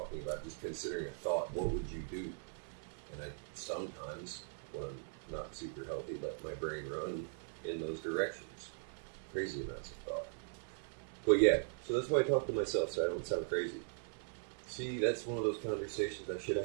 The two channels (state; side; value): silent; left; 51 dB below the other